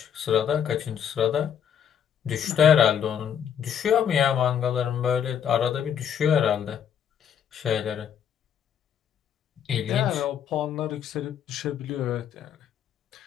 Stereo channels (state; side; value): quieter; right; 8.6 dB